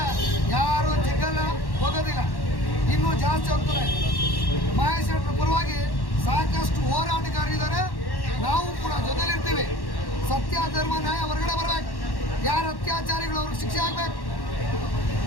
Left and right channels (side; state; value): right; late; 1.1 ms